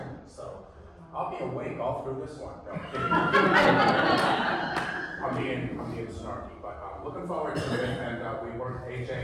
So I'll be awake all through this one. No, I'm kidding. I'm being snarky, but I'm looking forward to it. And we worked AJ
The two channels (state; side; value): identical; both; correlation 1.00